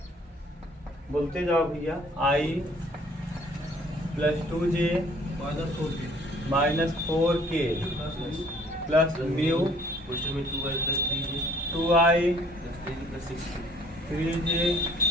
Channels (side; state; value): both; normal; correlation 0.57